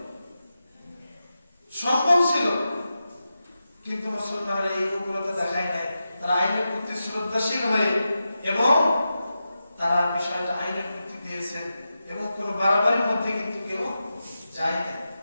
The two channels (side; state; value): both; inverted; correlation -0.90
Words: সম্ভব ছিল, কিন্তু মুসলমানরা এই উগ্রতা দেখায় নাই। তারা আইনের প্রতি শ্রদ্ধাশীল হয়ে এবং তারা বিষয়টা আইনের প্রতি দিয়েছেন এবং কোন বাড়াবাড়ির মধ্যে কিন্তু কেউ যায় না,